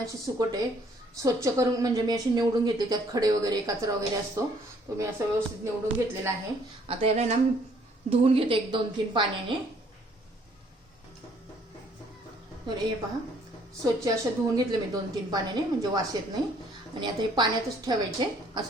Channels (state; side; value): normal; both; correlation 0.62